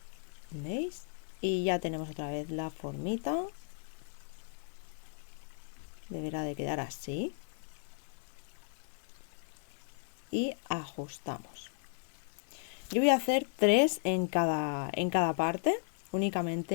¿Veis? Y ya tenemos otra vez la formita. Deberá de quedar así. Y ajustamos. Yo voy a hacer 3 en cada parte,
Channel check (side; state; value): right; silent; 54 dB below the other